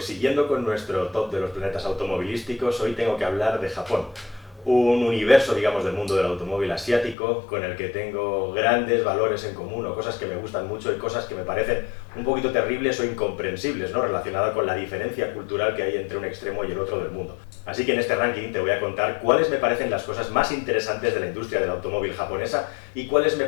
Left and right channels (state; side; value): drops out; right; at 7.2 s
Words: siguiendo con nuestro top de los planetas automovilísticos, hoy tengo que hablar de Japón, un universo, digamos, del mundo del automóvil asiático con el que tengo grandes valores en común o cosas que me gustan mucho y cosas que me parecen un poquito terribles o incomprensibles, ¿no? Relacionada con la diferencia cultural que hay entre un extremo y el otro del mundo. Así que en este ranking te voy a contar cuáles me parecen las cosas más interesantes de la industria del automóvil japonesa y cuáles me